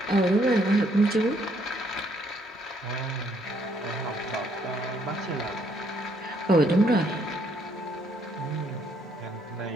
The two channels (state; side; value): normal; both; correlation 0.69